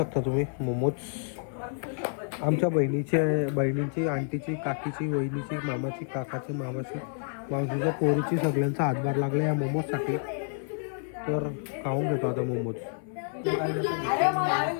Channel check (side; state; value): right; silent; 59 dB below the other